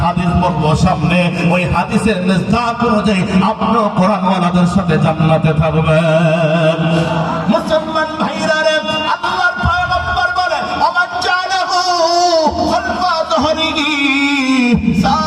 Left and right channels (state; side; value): identical; both; correlation 1.00